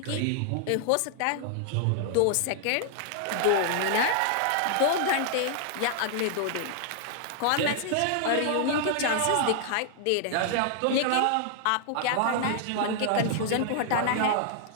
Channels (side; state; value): both; different; correlation 0.00